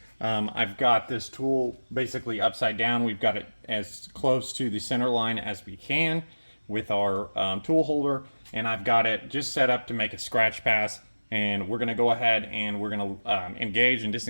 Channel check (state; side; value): inverted; both; correlation -1.00